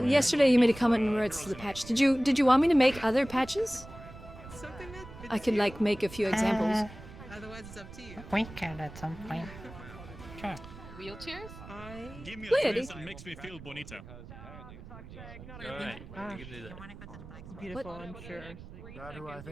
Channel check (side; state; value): right; noise; rumble, 15 dB below the sound